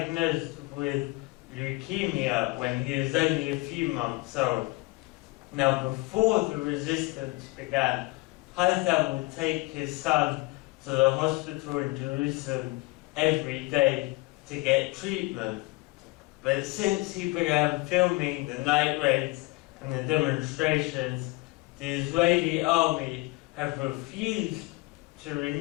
with leukemia when he was only a few months old. Now, before the resistance began, Haitham would take his son to the hospital in Jerusalem every day to get treatment. But since he began filming the night raids and the demonstrations, the Israeli army have refused to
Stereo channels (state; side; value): quieter; right; 22.6 dB